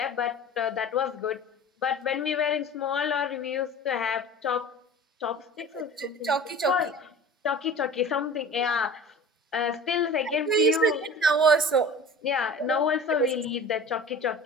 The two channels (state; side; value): normal; both; correlation 0.39